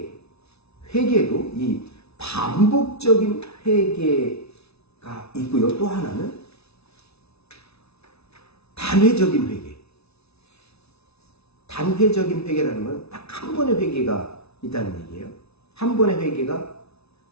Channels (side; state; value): right; late; 0.80 ms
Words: 이 반복적인 회개가 있고요. 또 하나는 단회적인 회개. 단회적인 회개라는 건 딱 한 번의 회개가 있다는 얘기예요. 한 번의 회개가